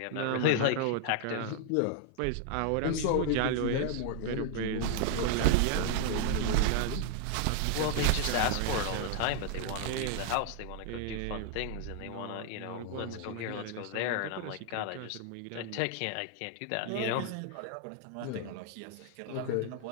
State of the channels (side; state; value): both; different; correlation 0.00